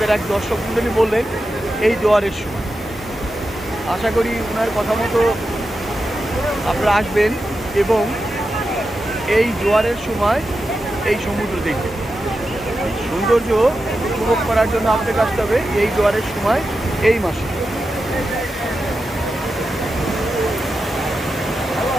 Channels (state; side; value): normal; both; correlation 0.90